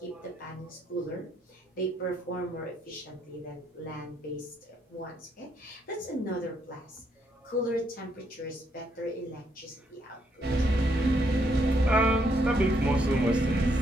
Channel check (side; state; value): both; normal; correlation 0.74